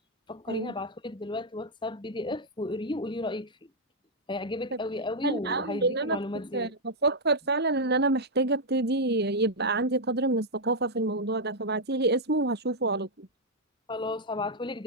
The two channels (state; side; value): normal; both; correlation -0.03